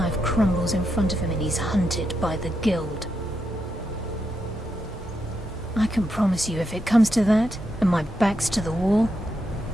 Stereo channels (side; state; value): both; normal; correlation 0.83